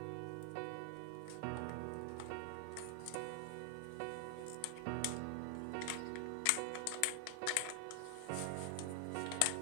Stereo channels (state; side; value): different; both; correlation 0.00